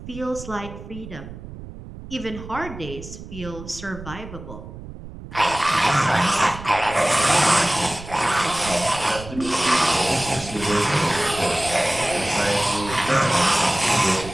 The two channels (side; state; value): right; noise; rumble, 13 dB below the sound